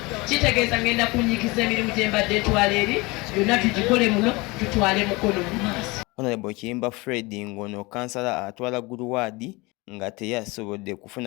kitegeeza ngenda kunyikiza emirimu gye mbadde etwala eri byonna tugikole muno tutwale Mukono mu maaso. Honorable Kiyimba Fred ngono kansala atwala Guluwaadi nga teyasobodde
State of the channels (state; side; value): quieter; right; 24.4 dB